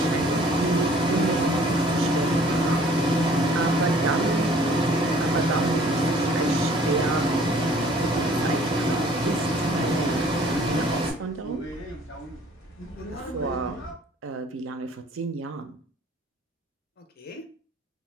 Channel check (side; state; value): both; normal; correlation 0.55